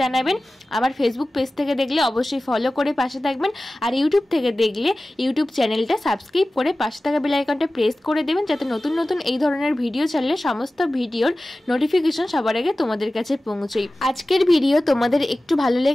জানাবেন। আমার ফেসবুক পেজ থেকে দেখলে অবশ্যই ফলো করে পাশে থাকবেন, আর ইউটিউব থেকে দেখলে ইউটিউব চ্যানেলটা সাবস্ক্রাইব করে পাশে থাকা বেল আইকনটা প্রেস করে দেবেন, যাতে নতুন নতুন এই ধরনের ভিডিও ছাড়লে সমস্ত ভিডিওর নোটিফিকেশন সবার আগে তোমাদের কাছে পৌঁছয়। আজকের ভিডিও তোমাদের একটু ভালো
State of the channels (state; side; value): normal; both; correlation 0.96